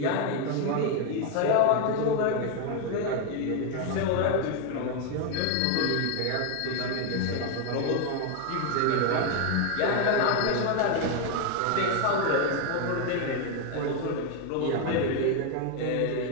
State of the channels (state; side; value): different; both; correlation 0.01